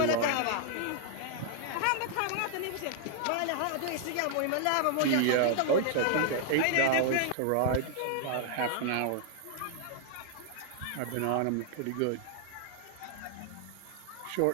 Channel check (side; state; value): both; different; correlation 0.00